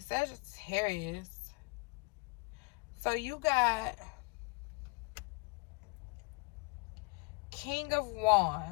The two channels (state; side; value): quieter; right; 30.2 dB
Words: Sagittarius. So you got King of